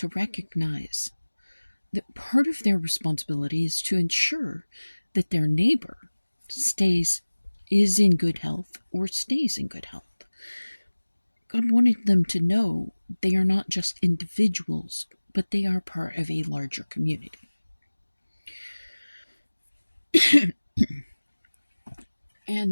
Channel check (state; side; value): inverted; both; correlation -1.00